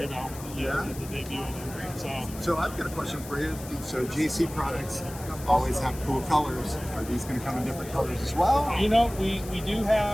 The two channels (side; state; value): left; noise; hiss, 15 dB below the sound